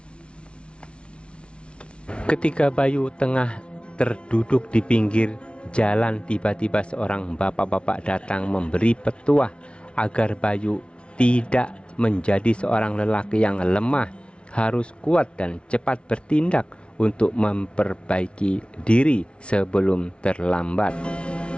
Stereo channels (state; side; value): late; right; 0.059 ms